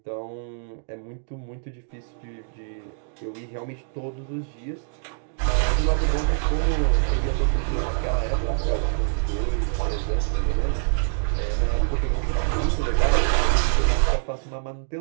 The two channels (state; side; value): silent; left; digital silence